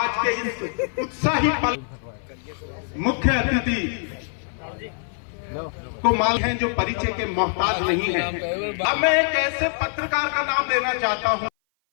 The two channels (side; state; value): right; silent; 57 dB below the other